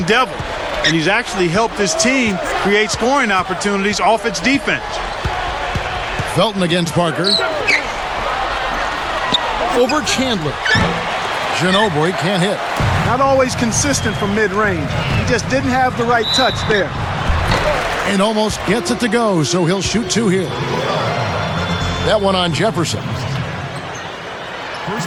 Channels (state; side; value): identical; both; correlation 1.00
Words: Devil, and he's actually helped his team create scoring opportunities off its defense. Felton against Parker. Over Chandler. Ginobili can't hit. Not always consistent from mid-range. He just didn't have the right touch there. And almost gets it to go, so he'll shoot 2 here. That one on Jefferson.